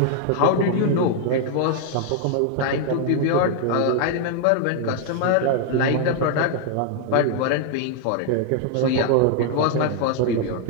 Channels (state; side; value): different; both; correlation 0.00